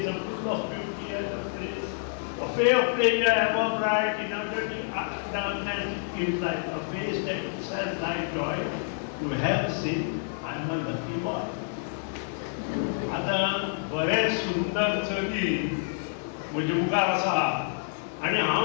a full of beauty and of grace a fair figure ever bright in a dirty darkness it gives light a face that itself like joy to have seen I'm a lucky boy आता बरेच सुंदर चली म्हणजे मुखार आसा आणि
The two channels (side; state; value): right; silent; digital silence